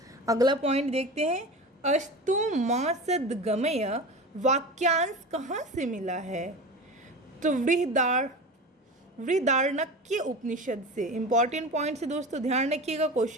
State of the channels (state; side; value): normal; both; correlation 0.30